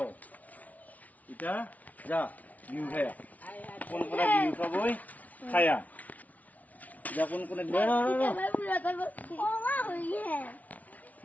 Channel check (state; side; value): late; right; 0.072 ms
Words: kita ja biu kaya pun pernah biu ka boy kaya ja